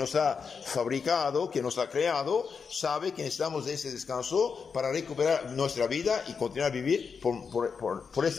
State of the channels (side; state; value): right; quieter; 5.8 dB